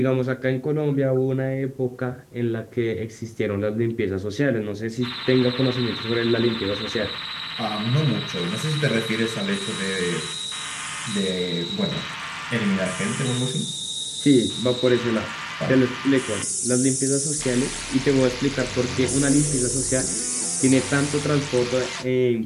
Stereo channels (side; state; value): both; identical; correlation 1.00